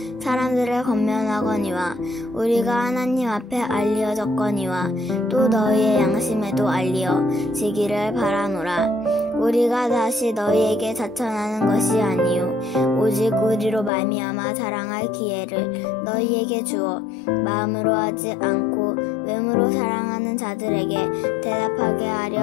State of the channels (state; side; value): drops out; right; at 13.9 s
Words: 사람들을 권면하거니와 우리가 하나님 앞에 알려졌거니와 또 너희의 양심에도 알려지기를 바라노라. 우리가 다시 너희에게 자천하는 것이 아니요 오직 우리로 말미암아 자랑할 기회를 너희에게 주어 마음으로 하지 않고 외모로 사랑하는 자들에게 대답하게 하려